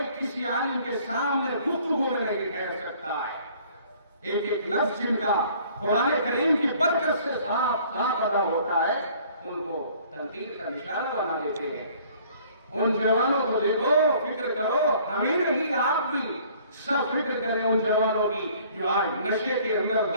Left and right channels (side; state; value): both; inverted; correlation -0.56